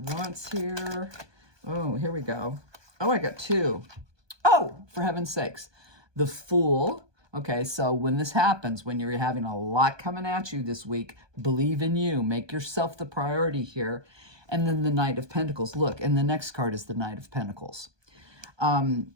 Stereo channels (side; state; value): left; late; 1.2 ms